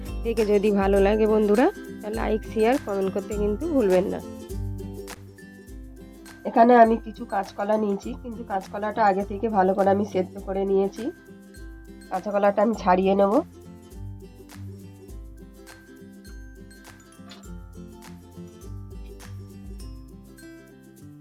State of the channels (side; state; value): both; identical; correlation 1.00